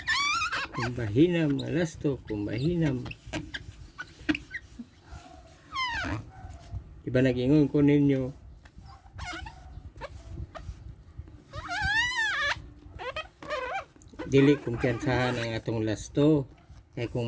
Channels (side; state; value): both; identical; correlation 1.00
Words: Kumbahinam. Diba nag-ingon ko ninyo? Dili kumpiyansahan ang atong last to. Kaya